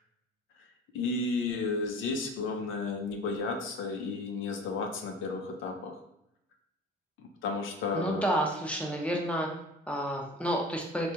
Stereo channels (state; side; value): normal; both; correlation 0.39